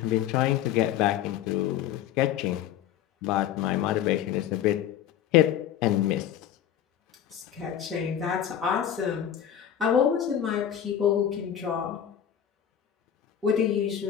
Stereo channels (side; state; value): right; quieter; 10.0 dB